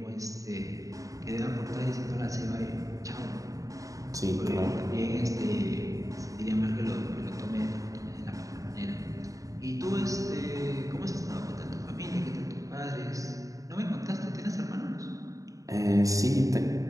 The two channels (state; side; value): late; left; 0.16 ms